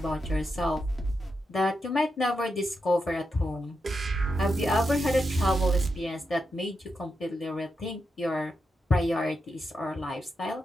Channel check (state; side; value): normal; both; correlation 0.86